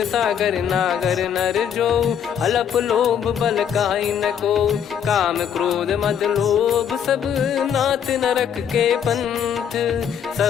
सागर नागर नर जो अलप लोभ बल काई न को। काम क्रोध मद लोभ सब नाथ नरक के पंथ।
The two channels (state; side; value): quieter; right; 8.4 dB